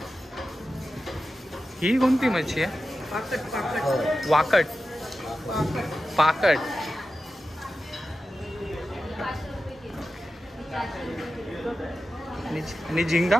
ही कोणती मच्छी आहे? पाकट वाकट पाकट। आणि झिंगा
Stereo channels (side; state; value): both; normal; correlation 0.92